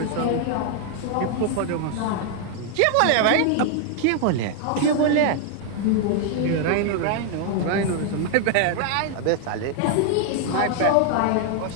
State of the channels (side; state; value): both; different; correlation 0.00